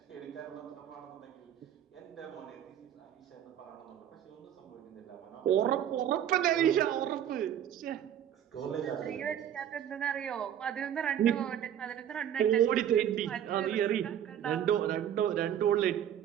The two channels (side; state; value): left; quieter; 10.1 dB